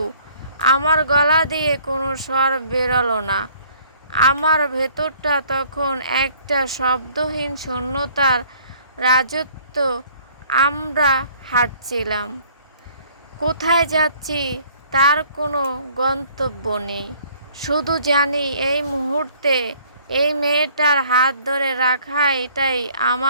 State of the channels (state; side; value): inverted; both; correlation -0.58